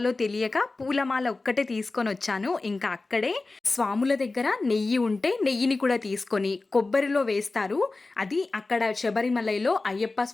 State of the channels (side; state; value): right; quieter; 3.5 dB